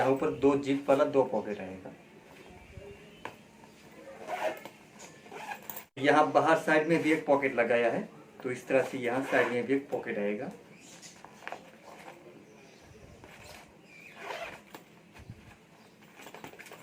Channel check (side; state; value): both; identical; correlation 1.00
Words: ऊपर दो जिप वाला दो पॉकेट आएगा। यहाँ बाहर साइड में भी एक पॉकेट लगाया है। तो इस तरह से यहाँ साइड में भी एक पॉकेट आएगा।